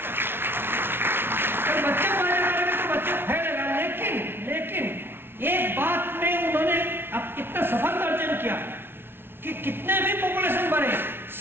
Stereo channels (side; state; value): left; late; 0.11 ms